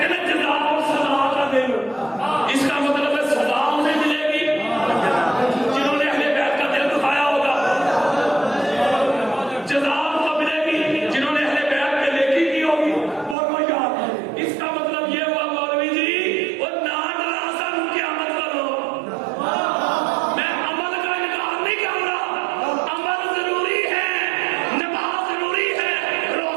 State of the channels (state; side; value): drops out; left; at 13.4 s